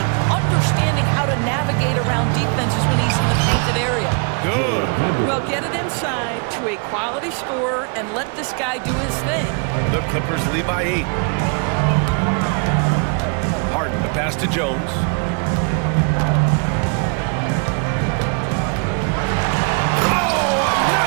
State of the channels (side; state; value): left; quieter; 37.0 dB